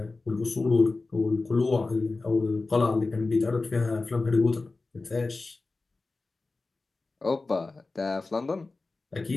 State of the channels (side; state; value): right; quieter; 3.5 dB